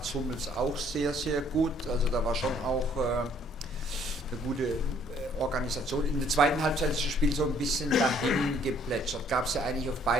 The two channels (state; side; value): normal; both; correlation 0.62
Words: Hummels auch sehr, sehr gut. Also da war schon auch eine gute Organisation. In der zweiten Halbzeit ist das Spiel so ein bisschen dahin geplätschert. Gab es ja eigentlich auf